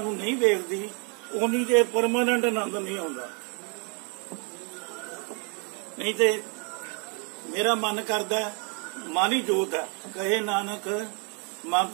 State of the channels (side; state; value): left; quieter; 36.4 dB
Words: नूं नहीं वेखदी, उन्नी देर परमानेंट आनंद नहीं आउंदा। नहीं तो मेरा मन करदा मन ही जोत है, कहे नानक मन